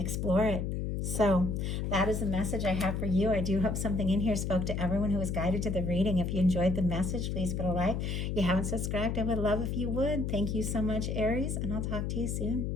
it. So that is the message I have for you. I do hope something in here spoke to everyone who was guided to the reading. If you enjoyed the message, please put a like. If you haven't subscribed, I would love if you would. Thank you so much, Aries, and I'll talk to you soon.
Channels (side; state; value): left; noise; hum, 1 dB below the sound